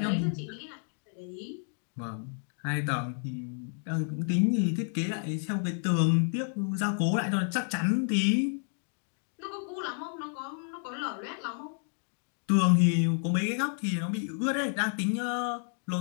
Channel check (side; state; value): right; silent; 57 dB below the other